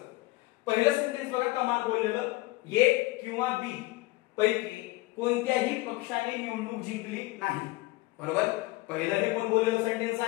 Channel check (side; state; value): right; quieter; 20.6 dB